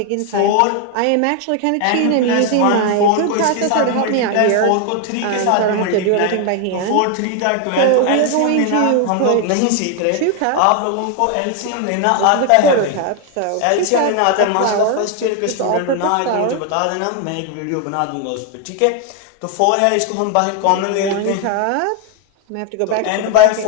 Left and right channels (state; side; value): different; both; correlation 0.01